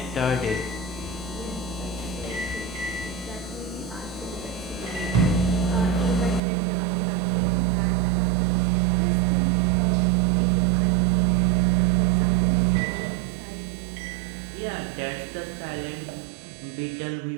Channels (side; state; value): left; drops out; at 6.4 s